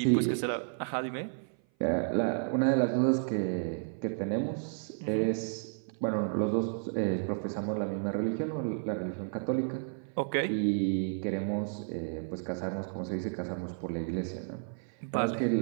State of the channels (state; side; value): silent; left; 55 dB below the other